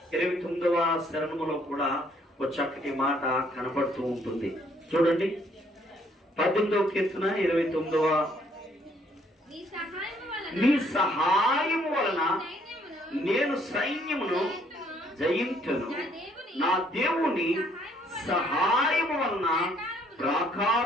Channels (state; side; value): normal; both; correlation 0.66